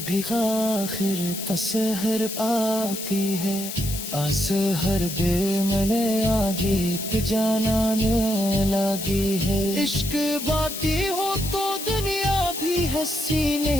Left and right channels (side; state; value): left; noise; hiss, 7 dB below the sound